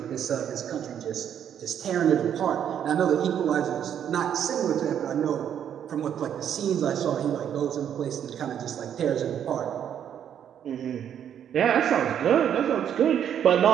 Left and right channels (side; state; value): left; quieter; 9.2 dB